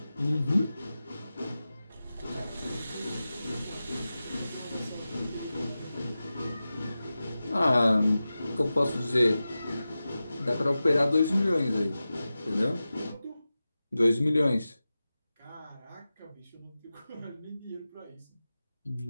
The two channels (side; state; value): both; inverted; correlation -0.94